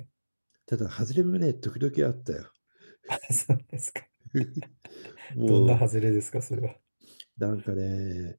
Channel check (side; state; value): both; inverted; correlation -1.00